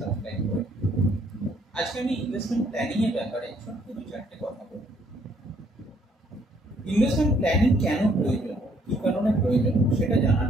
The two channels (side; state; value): both; normal; correlation 0.66